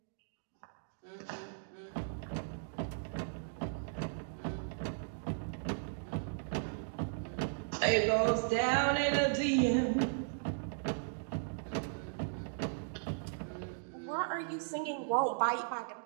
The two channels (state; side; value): silent; left; digital silence